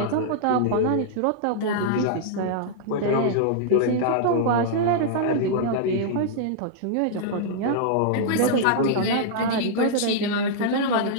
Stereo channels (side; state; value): both; different; correlation -0.01